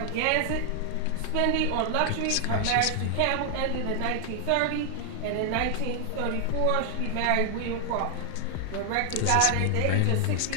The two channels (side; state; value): both; different; correlation 0.00